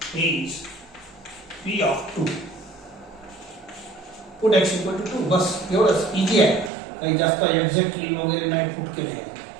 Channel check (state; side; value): drops out; left; at 6.7 s